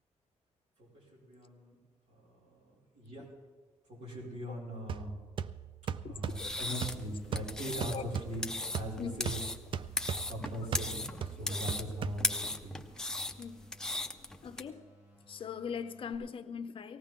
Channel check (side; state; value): both; normal; correlation 0.33